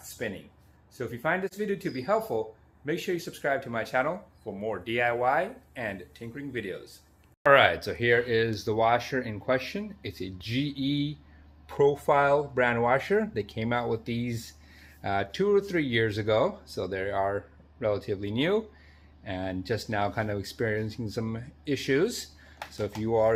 spinning. So if you find this video to be helpful, make sure you subscribe to my channel for more DIY and tinkering videos. All right, so here is the washer in question. It's a GE profile brand washer. They came out with these 2 or 3 years ago, so they are relatively new and just now kind of experiencing some issues. So if you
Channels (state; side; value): identical; both; correlation 1.00